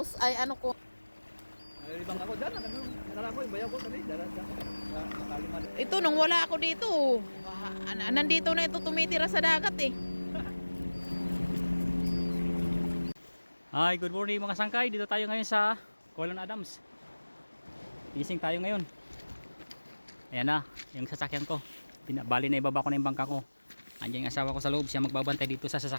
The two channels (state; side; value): inverted; both; correlation -1.00